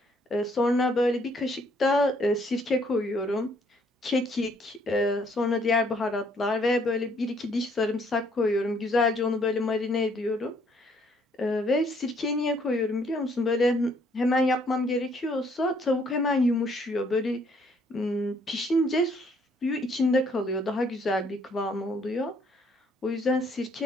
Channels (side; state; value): both; normal; correlation 0.65